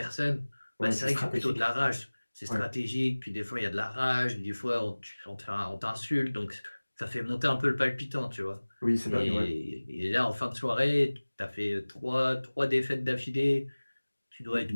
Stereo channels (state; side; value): inverted; both; correlation -1.00